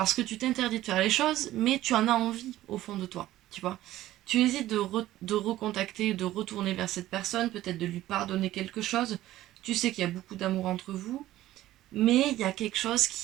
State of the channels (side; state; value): left; quieter; 14.8 dB